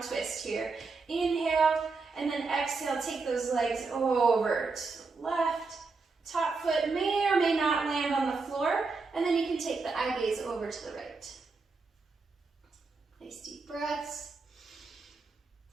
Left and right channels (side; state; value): left; quieter; 4.2 dB